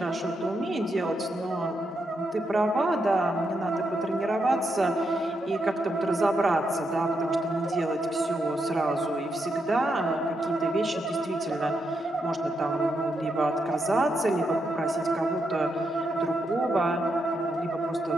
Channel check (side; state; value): both; normal; correlation 0.82